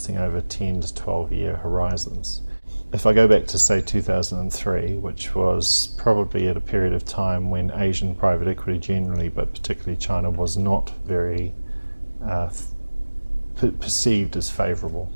over 10 to 12 year horizons. If I go back to, say, 2003, which was probably at a period of time when Asian private equity generally, but particularly China, was not very perceived as favourable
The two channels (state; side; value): inverted; both; correlation -1.00